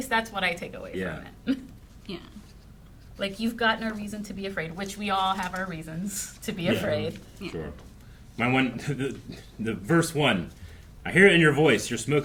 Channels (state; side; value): identical; both; correlation 1.00